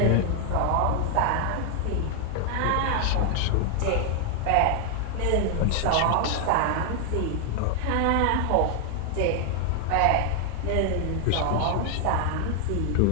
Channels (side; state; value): both; different; correlation 0.00